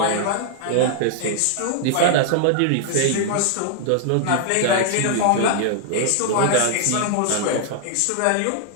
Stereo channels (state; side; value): different; both; correlation 0.00